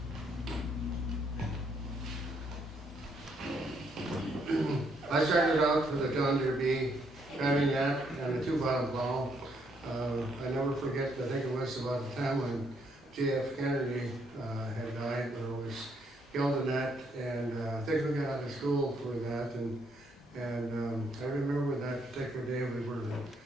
I started out with a John Deere B, driving that and a 2-bottom plow. I never forget, I think it was about the time when J.F. Kennedy had died, or was killed in that, and I think we got out of school for that, and I remember that particular day we were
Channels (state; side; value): normal; both; correlation 0.72